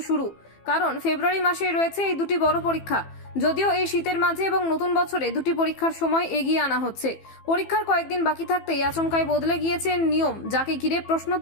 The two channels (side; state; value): right; late; 15 ms